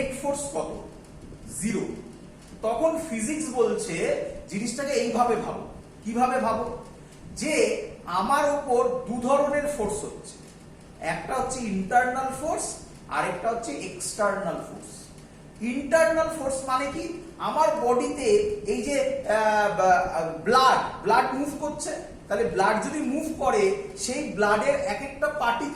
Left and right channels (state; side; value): identical; both; correlation 1.00